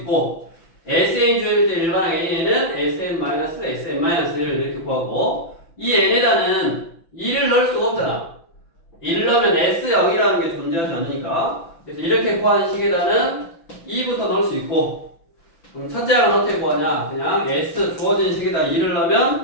SN이 주어질 때 일반항 AN은 SN-SN-1을 이렇게 구하고 이 n에다는 2를 넣을 수가 없잖아. 2를 넣으면 S0이라는 게 존재하지 않으니까 그래서 이렇게 구한 식에다는 2부터 넣을 수 있고 그럼 첫째 항은 어떻게 구하냐? 그냥 S 주어진 식에다 2를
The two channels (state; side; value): late; right; 6.0 ms